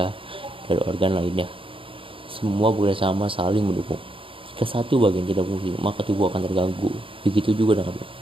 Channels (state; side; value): late; left; 0.26 ms